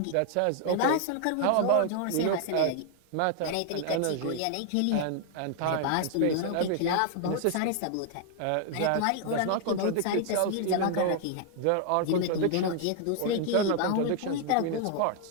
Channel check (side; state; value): both; different; correlation 0.00